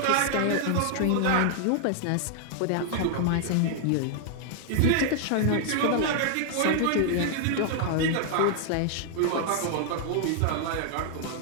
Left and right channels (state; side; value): different; both; correlation 0.00